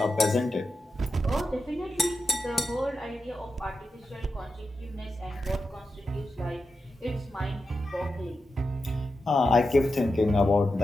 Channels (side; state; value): both; normal; correlation 0.89